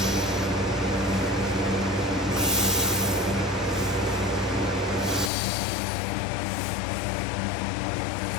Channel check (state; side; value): drops out; right; at 5.3 s